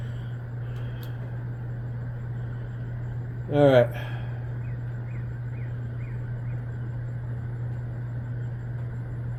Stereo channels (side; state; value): both; identical; correlation 1.00